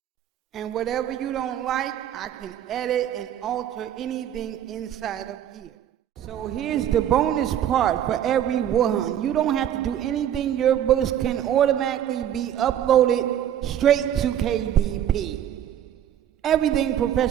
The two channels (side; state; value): left; quieter; 10.6 dB